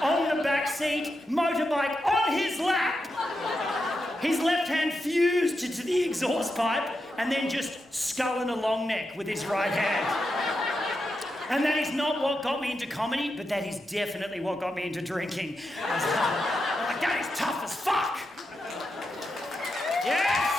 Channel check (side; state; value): both; normal; correlation 0.87